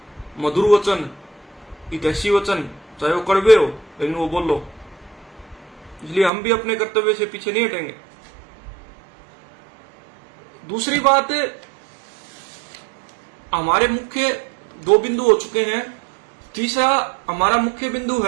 मधुर वचन, हितैषी वचन, चाहे वो कड़वे हो लेकिन वो बोल लो। इसलिए हम भी अपने कर्तव्य से पीछे नहीं हटेंगे। दूसरी बात, हमारे मुख्य 2 बिंदु हो चुके हैं। तीसरा हमारा मुख्य बिंदु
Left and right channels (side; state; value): left; drops out; at 6.3 s